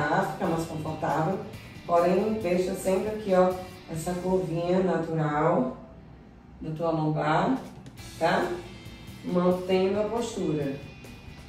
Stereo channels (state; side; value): identical; both; correlation 1.00